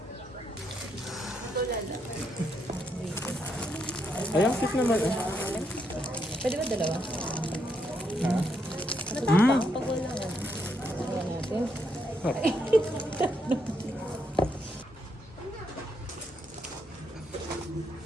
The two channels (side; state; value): both; normal; correlation 0.78